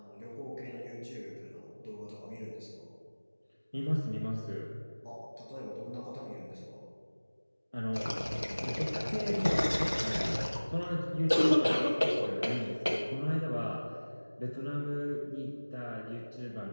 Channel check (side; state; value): both; inverted; correlation -1.00